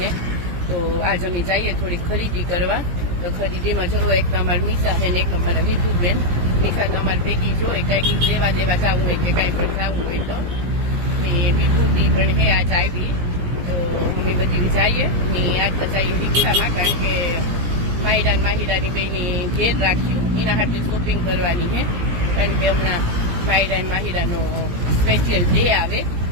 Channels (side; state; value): left; late; 17 ms